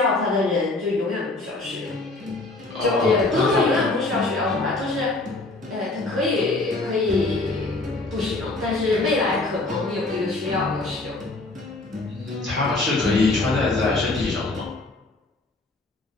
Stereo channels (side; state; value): right; quieter; 3.1 dB